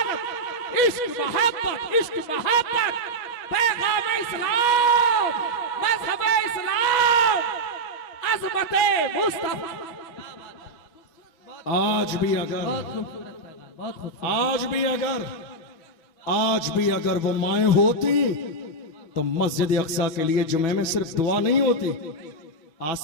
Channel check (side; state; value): right; late; 6.2 ms